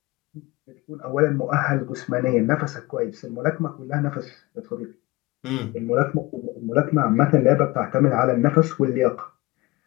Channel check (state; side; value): quieter; right; 21.2 dB